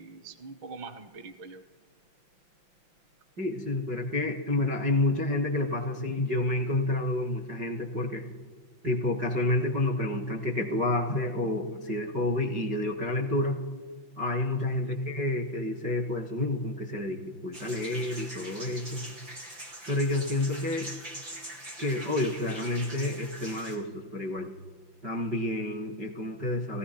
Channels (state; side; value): late; left; 5.8 ms